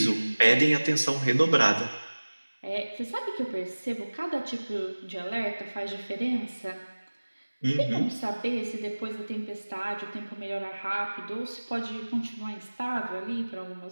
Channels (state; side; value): inverted; both; correlation -1.00